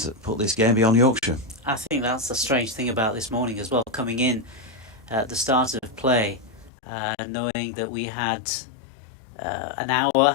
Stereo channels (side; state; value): right; drops out; at 6.7 s